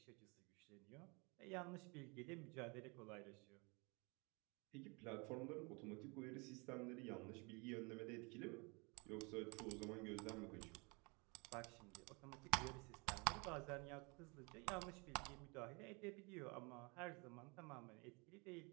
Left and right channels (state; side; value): quieter; left; 29.7 dB